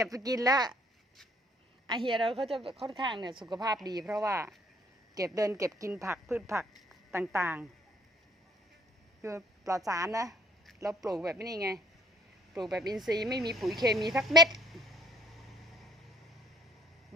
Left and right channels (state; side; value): normal; both; correlation 0.61